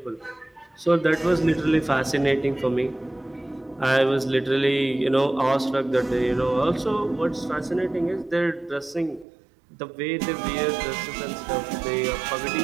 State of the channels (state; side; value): drops out; left; at 9.2 s